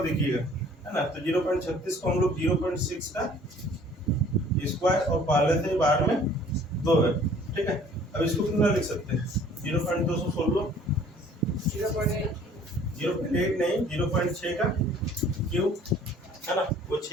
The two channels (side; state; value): both; normal; correlation 0.53